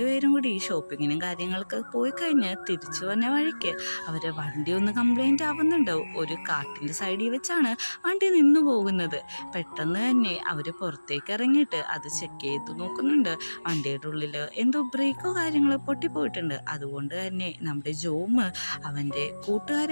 പേരും കൂടി ഷോപ്പിങ്ങിനും കാര്യങ്ങളൊക്കെ പോയി കഴിഞ്ഞ് തിരിച്ചു വന്ന വഴിക്ക് അവരെ വണ്ടി ഒന്ന് കംപ്ലൈൻറ്റ് ആവുന്നുണ്ട്. ഒരു കാട്ടിൻ്റെ സൈഡിൽ വെച്ചാണ് വണ്ടി നിന്നു പോകുന്നത്. പെട്ടെന്ന് തന്നെ അവർ പുറത്തേക്ക് ഇറങ്ങിയിട്ട് അത് ചെക്ക് ചെയ്ത് നോക്കുന്നുണ്ട്. വണ്ടിയുടെ ഉള്ളിൽ എന്തോ ബ്രേക്കോ കാര്യങ്ങളോ പൊട്ടിപ്പോയിട്ടുണ്ട്. അതുകൊണ്ട് തന്നെ നമ്മുടെ ജോമ് അവൻ്റെ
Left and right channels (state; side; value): inverted; both; correlation -1.00